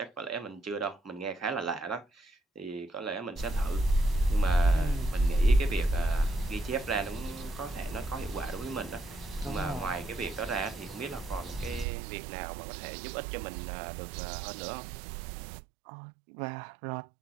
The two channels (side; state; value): left; drops out; at 11.9 s